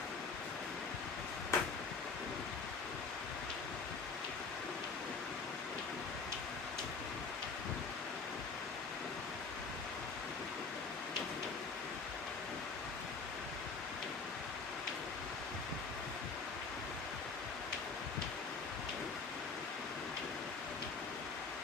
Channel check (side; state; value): right; quieter; 4.7 dB